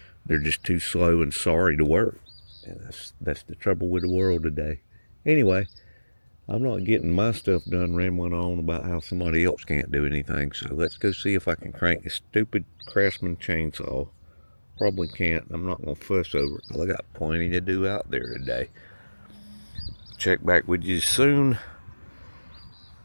they're just too slow and sorry to work. And that's the trouble with the world today. Anyway, I'm not getting my stuff done rambling on about how somebody else can't do anything. So let's go see if I can crank this stupid Craftsman chainsaw. Probably can't. I'm not going to fuss over it. I got plenty to do out there today. Check back with you soon.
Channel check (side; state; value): both; inverted; correlation -1.00